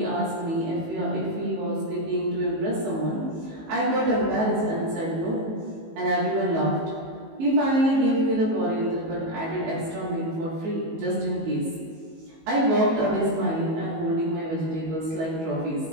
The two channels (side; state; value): left; late; 19 ms